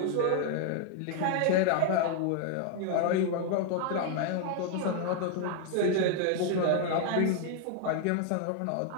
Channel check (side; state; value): both; different; correlation 0.00